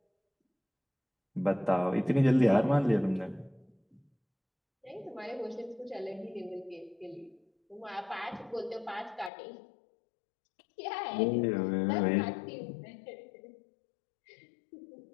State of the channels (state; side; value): drops out; right; at 9.3 s